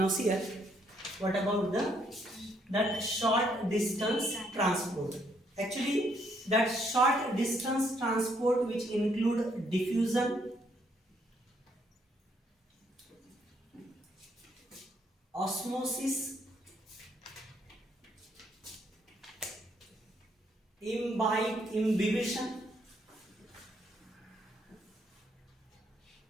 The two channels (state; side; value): normal; both; correlation 0.71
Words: see here, what about that short distance transport? Actually, that short distance transport which include diffusion, osmosis, imbibition,